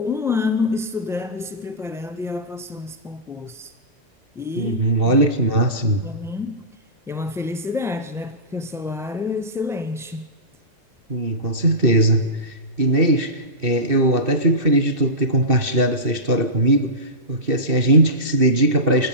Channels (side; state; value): left; late; 2.6 ms